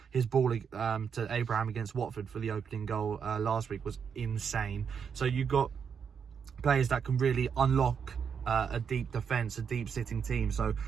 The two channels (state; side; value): quieter; left; 6.9 dB